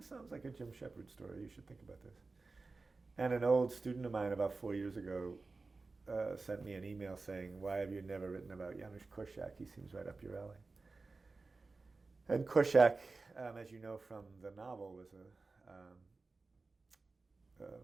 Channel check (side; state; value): left; quieter; 3.8 dB